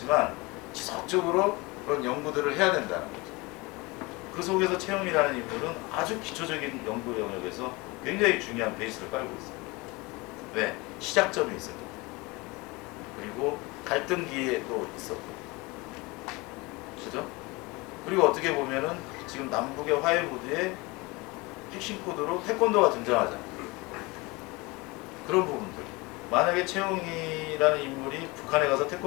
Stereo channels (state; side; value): quieter; right; 24.3 dB